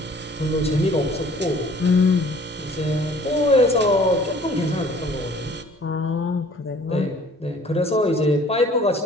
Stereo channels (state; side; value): normal; both; correlation 0.53